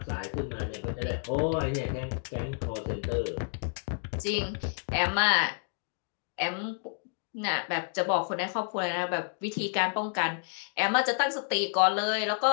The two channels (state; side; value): silent; right; 58 dB below the other